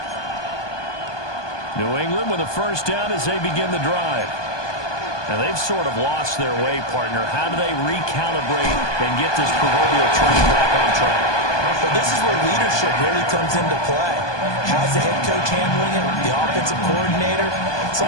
New England with a 1st down as they begin the drive. Now they've sort of lost their way, partner. How do they recalibrate and get this proverbial train back on track? But this is where leadership really comes into play. How's the head coach handling it? The offensive coordinator?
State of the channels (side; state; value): right; late; 1.2 ms